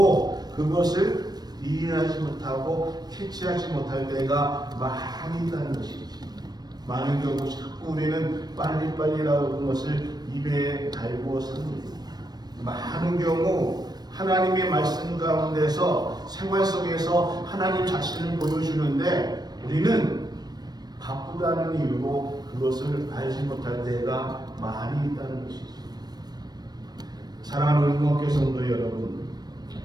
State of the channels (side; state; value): left; late; 0.19 ms